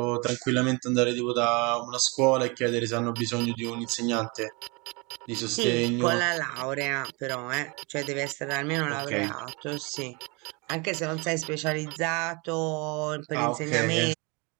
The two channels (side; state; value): left; quieter; 29.0 dB